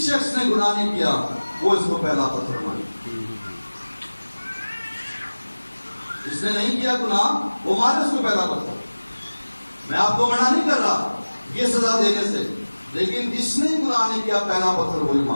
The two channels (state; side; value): inverted; both; correlation -1.00